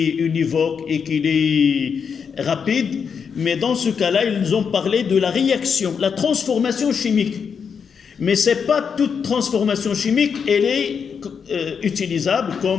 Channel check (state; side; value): quieter; right; 6.5 dB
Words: univoque et qu'il est rapide, mais dans ce cas-là, ils ont parlé de la réaction, la transformation chimique. Mais ce n'est pas toute transformation chimique, elle est utilisable